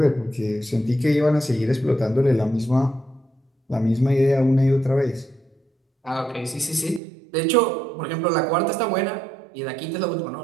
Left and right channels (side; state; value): left; drops out; at 7.0 s